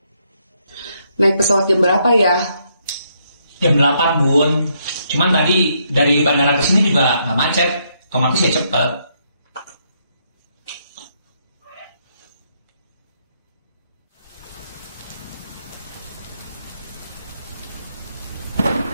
Naik pesawat jam berapa ya? Jam 8, Bun. Cuman tadi dari bandara ke sini juga nggak macet. Otomatis ya cepet.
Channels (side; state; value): both; inverted; correlation -0.75